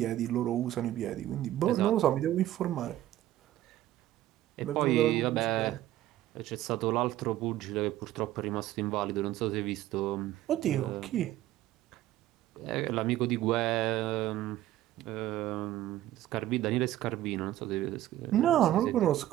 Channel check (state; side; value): quieter; left; 13.9 dB